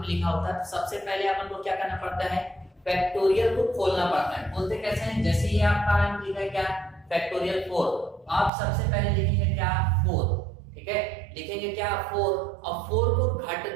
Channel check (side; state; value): left; drops out; at 8.5 s